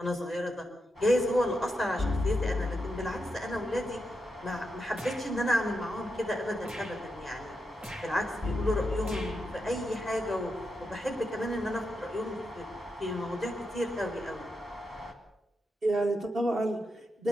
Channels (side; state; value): both; normal; correlation 0.86